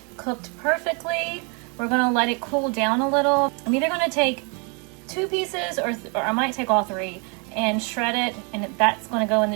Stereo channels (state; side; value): quieter; left; 35.3 dB